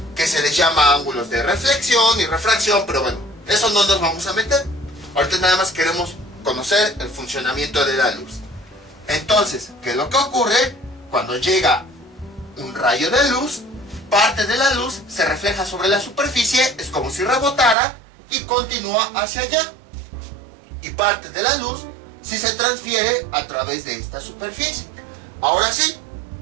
que se les llama ángulos de reflexión y refracción, pero bueno, eso no nos vamos a meter. Ahorita nada más queremos conocer el funcionamiento de la luz. Entonces, ¿qué es lo que ocurre? Cuando llega un rayo de luz, parte de la luz se refleja sobre la superficie, es como si rebotara y continúa hacia allá. Y parte de la luz sí se transfiere a través de esta superficie. Ahora sí,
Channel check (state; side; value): drops out; left; at 17.8 s